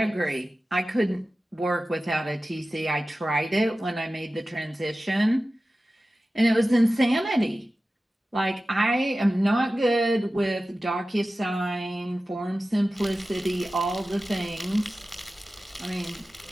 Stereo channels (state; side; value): normal; both; correlation 0.95